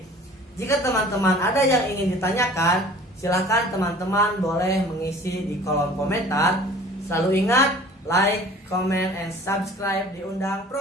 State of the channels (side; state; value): both; normal; correlation 0.47